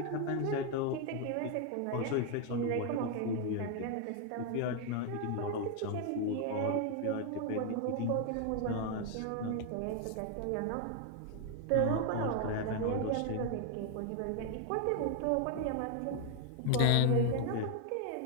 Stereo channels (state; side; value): different; both; correlation 0.00